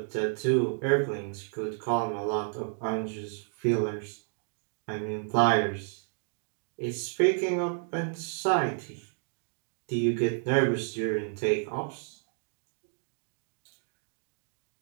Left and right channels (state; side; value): silent; left; 57 dB below the other